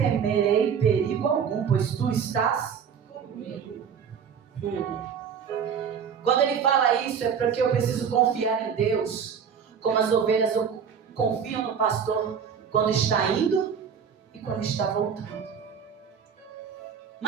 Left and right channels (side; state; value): left; quieter; 7.2 dB